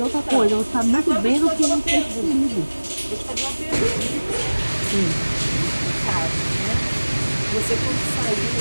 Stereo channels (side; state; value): both; inverted; correlation -1.00